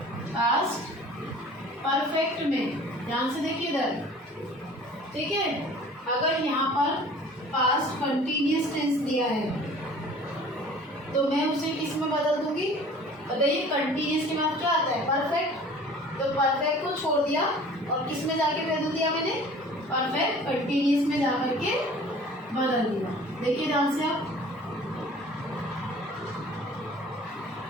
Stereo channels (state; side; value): normal; both; correlation 0.47